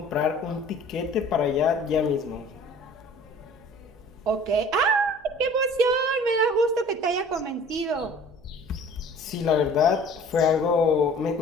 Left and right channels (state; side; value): noise; right; hum, 29 dB below the sound